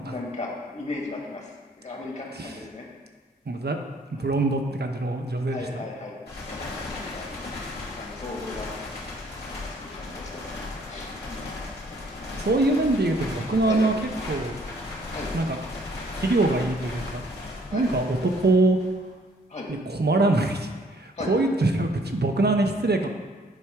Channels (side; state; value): both; normal; correlation 0.62